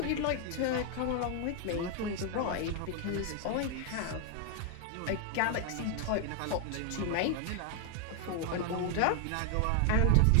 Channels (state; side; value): different; both; correlation 0.00